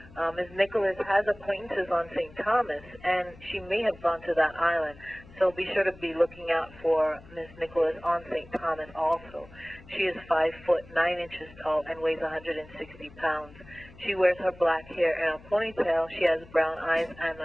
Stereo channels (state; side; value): noise; left; hum, 21 dB below the sound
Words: Ms. Nicholas has acquaintances on St. Thomas, and she may have gone to that island, so be sure to be looking out for Ms. Nicholas on St. Thomas also. She is 5 foot 9 inches tall and weighs 160 pounds. She wears her black hair in a ponytail. She has brown eyes and